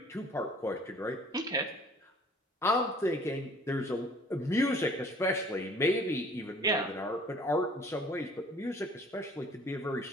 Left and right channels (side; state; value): both; normal; correlation 0.53